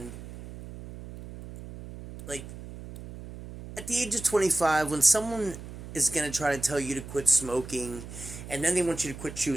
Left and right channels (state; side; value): noise; right; hum, 12 dB below the sound